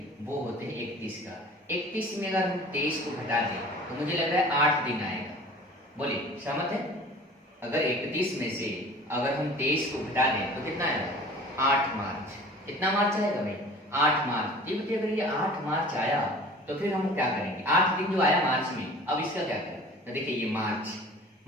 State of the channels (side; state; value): both; normal; correlation 0.44